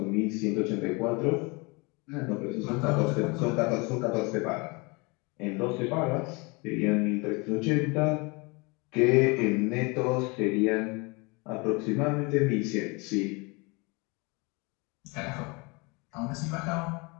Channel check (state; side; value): quieter; right; 28.3 dB